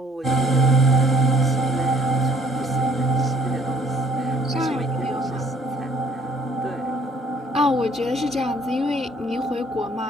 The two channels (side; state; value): both; normal; correlation 0.61